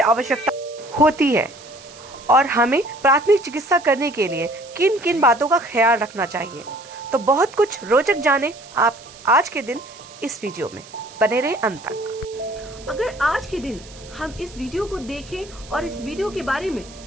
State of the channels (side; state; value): right; noise; hiss, 20 dB below the sound